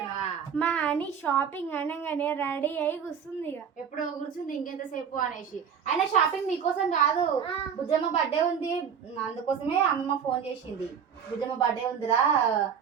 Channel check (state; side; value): quieter; left; 7.5 dB